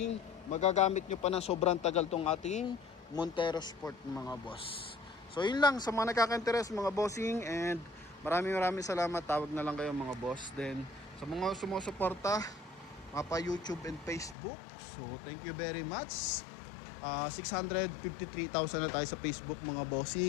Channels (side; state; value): right; drops out; at 14.4 s